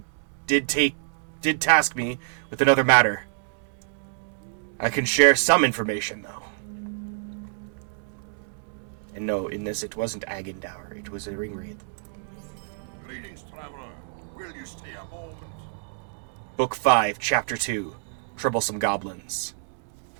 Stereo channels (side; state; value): left; silent; digital silence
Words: did task me with another matter. I can share some information, though. And no, in this it wasn't Agendour, it was a Ringwraith. Greetings, traveler. Will you stay a moment? Book 5, Chapter 2, Troublesome Goblins.